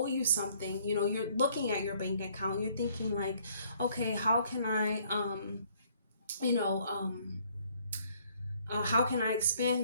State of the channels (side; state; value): both; inverted; correlation -0.63